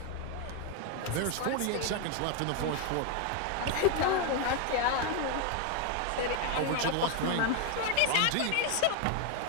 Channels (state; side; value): different; both; correlation 0.01